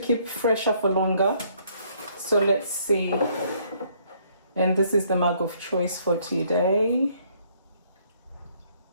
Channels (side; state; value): both; inverted; correlation -0.66